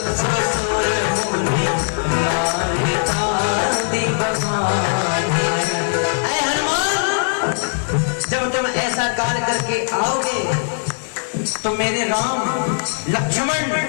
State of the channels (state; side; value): silent; right; digital silence